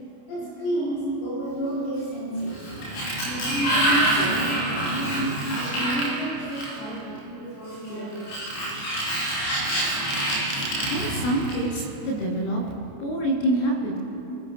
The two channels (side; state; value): right; late; 28 ms